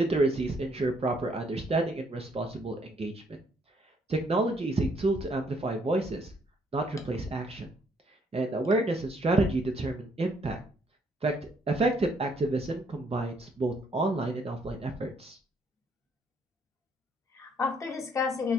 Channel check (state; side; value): normal; both; correlation 0.68